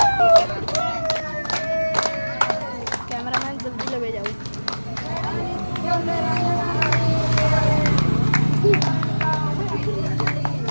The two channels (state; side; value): inverted; both; correlation -1.00